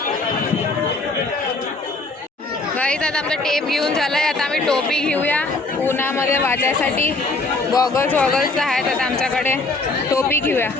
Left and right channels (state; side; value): quieter; right; 3.3 dB